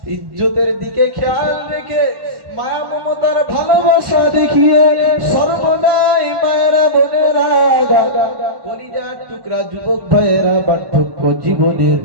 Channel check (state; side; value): late; left; 1.1 ms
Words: ইজ্জতের দিকে খেয়াল রেখে মায়া মমতার ভালোবাসা দেখিয়ে সর্বদাই মায়েরা বোনেরা কলিজার টুকরা যুবক ভাইয়েরা বার্ধক্য জীবনের